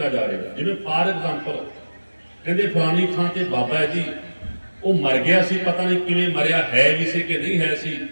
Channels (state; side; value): inverted; both; correlation -1.00